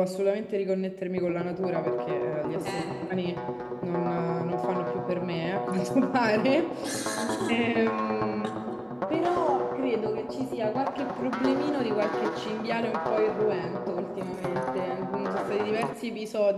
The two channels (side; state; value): both; identical; correlation 1.00